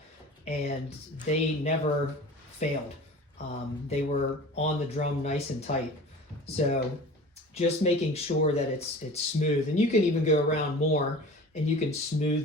and they never failed. They were on the drum nice and tight. So just making sure that it's smooth, and you can even go around more and you can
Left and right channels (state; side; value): normal; both; correlation 0.39